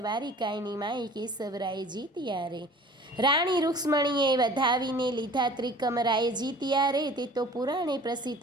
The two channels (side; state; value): both; normal; correlation 0.46